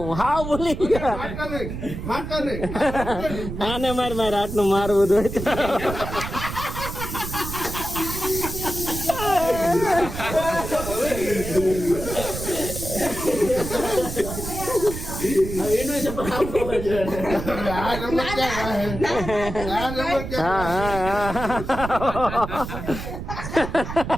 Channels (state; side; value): noise; right; rumble, 7 dB below the sound